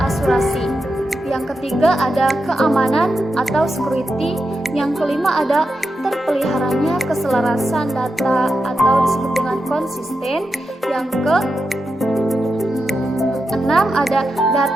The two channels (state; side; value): normal; both; correlation 0.88